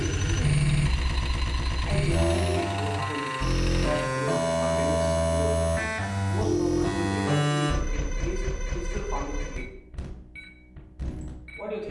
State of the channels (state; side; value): identical; both; correlation 1.00